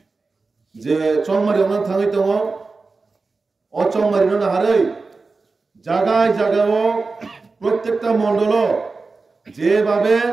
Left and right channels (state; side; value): quieter; left; 4.0 dB